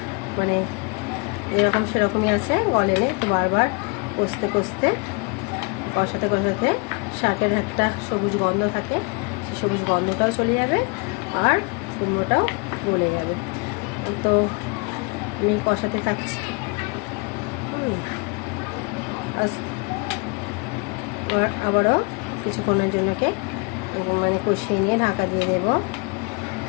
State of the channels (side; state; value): right; quieter; 31.2 dB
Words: মানে এরকম সেরকমই আছে, গলেনে। তো বারবার কষতে কষাতে শাকের একটা সবুজ গন্ধ থাকে, সেই সবুজ গন্ধটাও চলে যাবে আর কুমড়োটাও গলে যাবে। তো আমি কষাতে থাকছি। আবারও কিছুক্ষণের জন্যকে মানে কষিয়ে নিয়ে ঢাকা দিয়ে দেব।